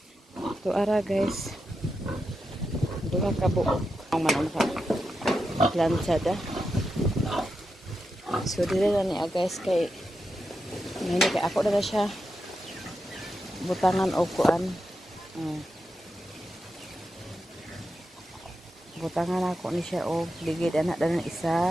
Tuara guys. Duha ka buok ang manong ka. Planchada. So dire na niya guys kay ngani kay ako na siya butangan og kuan. Butangan ako ni siya og ligid anak dalan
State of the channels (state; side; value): normal; both; correlation 0.87